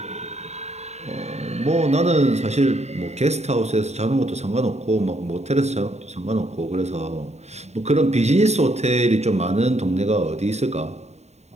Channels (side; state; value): left; late; 0.32 ms